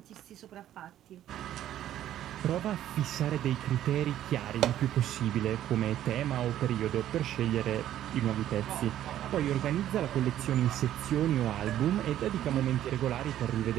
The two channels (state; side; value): quieter; left; 12.1 dB